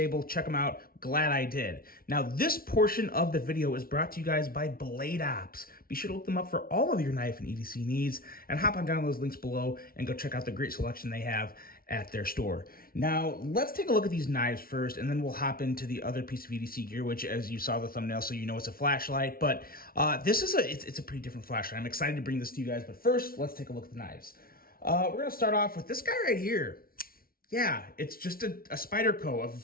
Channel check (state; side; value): late; right; 0.43 ms